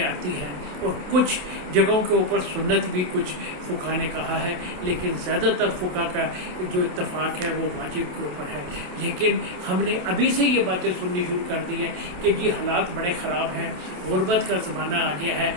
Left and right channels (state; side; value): late; left; 27 ms